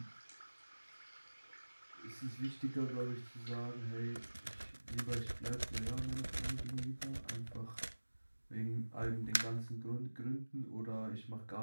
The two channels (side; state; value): both; inverted; correlation -1.00